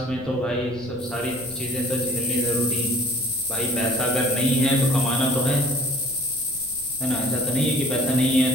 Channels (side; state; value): right; noise; rumble, 20 dB below the sound